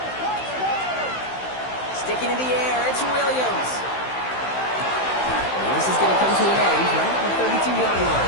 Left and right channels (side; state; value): right; late; 15 ms